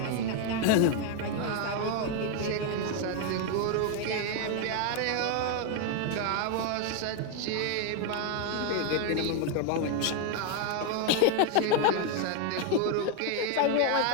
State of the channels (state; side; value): different; both; correlation 0.01